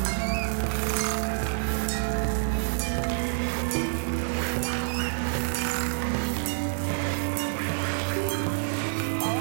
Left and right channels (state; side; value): silent; left; digital silence